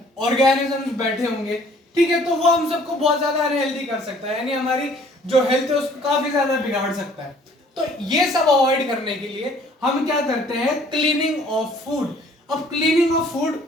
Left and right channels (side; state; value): both; normal; correlation 0.57